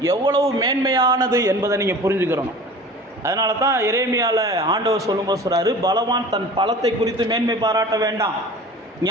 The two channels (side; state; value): both; normal; correlation 0.41